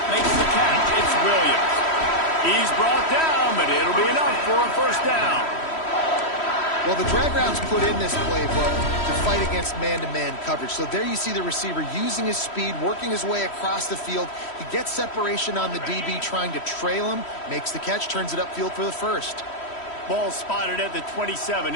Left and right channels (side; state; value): right; late; 3.1 ms